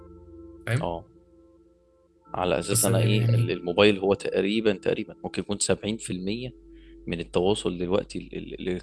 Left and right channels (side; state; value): both; identical; correlation 1.00